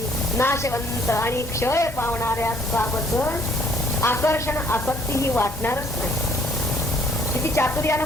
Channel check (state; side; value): normal; both; correlation 0.62